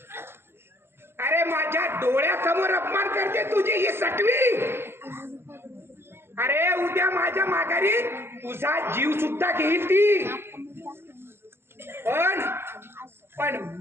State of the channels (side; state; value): left; late; 0.11 ms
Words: अरे माझ्या डोळ्यासमोर अपमान करते तुझी ही सटवी. अरे उद्या माझ्या माघारी तुझा जीव सुद्धा घेईल ती. पण